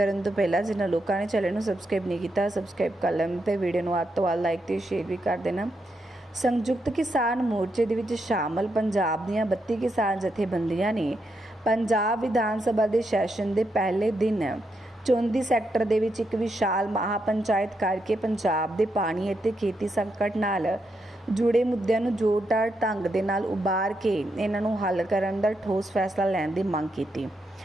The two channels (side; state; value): both; normal; correlation 0.82